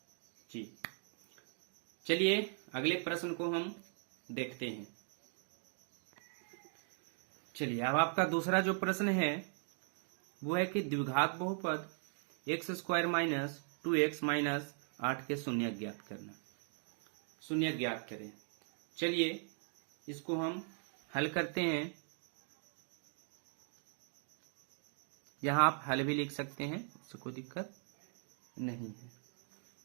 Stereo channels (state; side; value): silent; left; 51 dB below the other